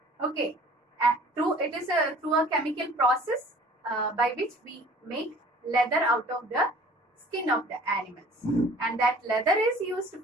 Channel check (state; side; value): normal; both; correlation 0.49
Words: Okay. And through a chemical process by which we make leather out of the skin of the animals, and that leather is used